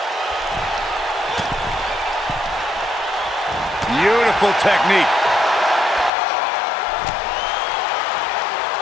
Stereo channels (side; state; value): right; drops out; at 6.1 s